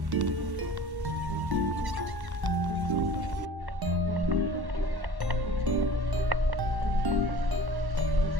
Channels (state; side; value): late; left; 1.1 ms